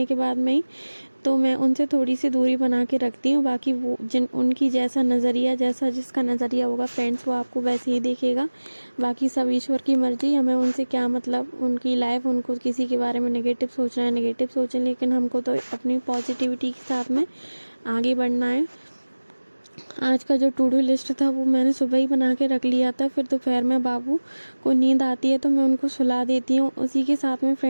के बाद में ही, तो मैं उनसे थोड़ी सी दूरी बना के रखती हूँ। बाकी वो उनकी जैसा नज़रिया, जैसा जिसका नज़रिया होगा फ्रेंड्स, वो आपको वैसे ही देखेगा। बाकी सब ईश्वर की मर्जी, हमें उनसे क्या मतलब, उनकी लाइफ, उनको किसी के बारे में नेगेटिव सोचना है नेगेटिव सोचें, लेकिन हमको तो अपनी पॉजिटिविटी के साथ में आगे बढ़ना है। आज का जो टू डू लिस्ट था वो मैंने सुबह ही बना के रख लिया था। फिर दोपहर में बाबू को नींद आती है तो मैं उनको सुला देती हूँ। उसी के साथ में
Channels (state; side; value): inverted; both; correlation -1.00